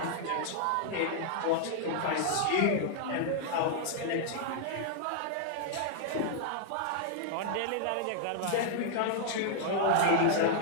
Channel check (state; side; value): different; both; correlation -0.01